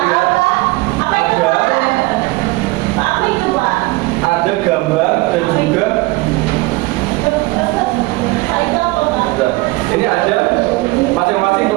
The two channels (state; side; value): quieter; left; 22.0 dB